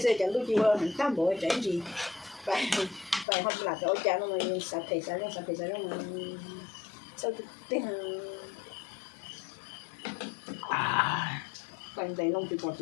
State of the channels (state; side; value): drops out; right; at 3.2 s